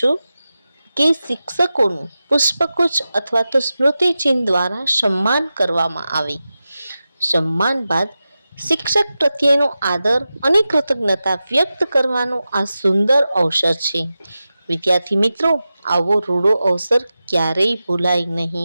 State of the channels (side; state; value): both; inverted; correlation -0.93